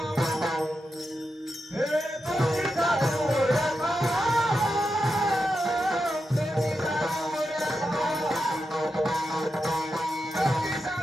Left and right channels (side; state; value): both; normal; correlation 0.88